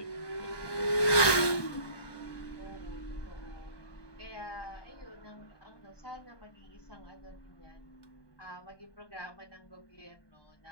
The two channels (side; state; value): right; late; 1.2 ms